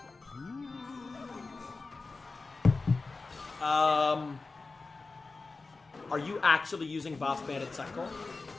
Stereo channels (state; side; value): quieter; right; 3.8 dB